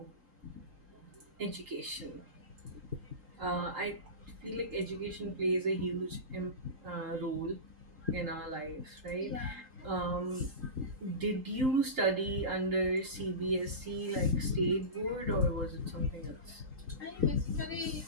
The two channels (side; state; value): left; late; 3.8 ms